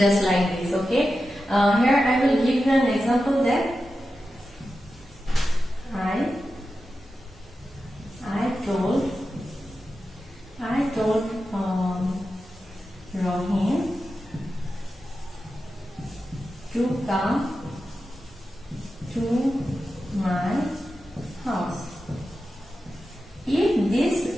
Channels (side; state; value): both; normal; correlation 0.91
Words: like this. Okay, here I will give you an example that I told Rohim to come to my house. If this